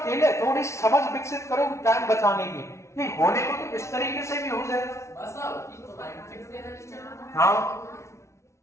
है, थोड़ी समझ विकसित करो टाइम बचाने की, नहीं होने को तो इस तरीके से भी हो जाएगा। हाँ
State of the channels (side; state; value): right; late; 0.13 ms